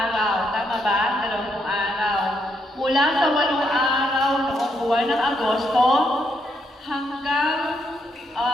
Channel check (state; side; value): normal; both; correlation 0.77